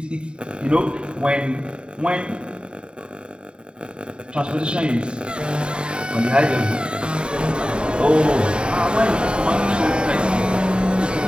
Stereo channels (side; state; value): left; late; 0.051 ms